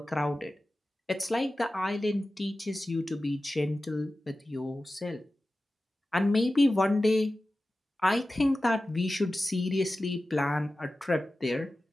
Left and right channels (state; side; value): normal; both; correlation 0.95